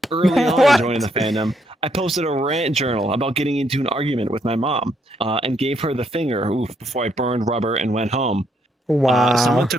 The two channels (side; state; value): both; normal; correlation 0.74